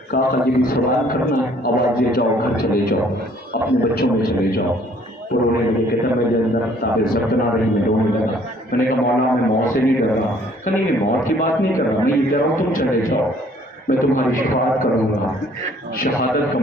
کہا کہ یہ بھی سوال کرنا ہے. آواز دے جاؤ, گھر چلے جاؤ, اپنے بچوں میں چلے جاؤ. تو رونے لگے, کہتا میرے اندر تابع ضبط نہ رہی, میں رونے لگا. میں نے کہا مولا میں موت سے نہیں ڈر رہا. کہ نہیں, میں موت کی بات نہیں کر رہا, میں یہ کہہ رہا ہوں تم چلے جاؤ, میں تمہاری شفاعت کروں گا, شہادت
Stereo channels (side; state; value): both; normal; correlation 0.59